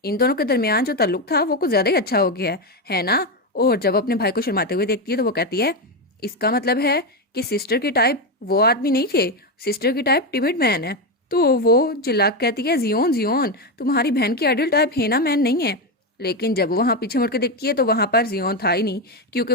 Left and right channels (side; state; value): both; normal; correlation 0.10